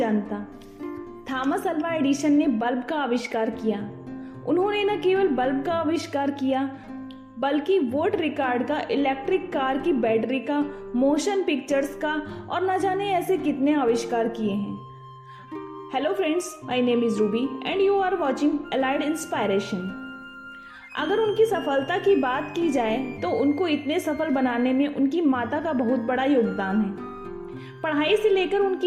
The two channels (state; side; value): identical; both; correlation 1.00